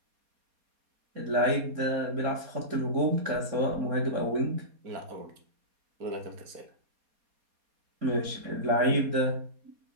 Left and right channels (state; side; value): late; left; 4.2 ms